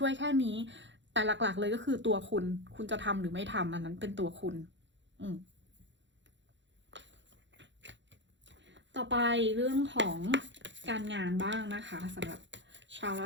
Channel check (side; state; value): left; late; 0.54 ms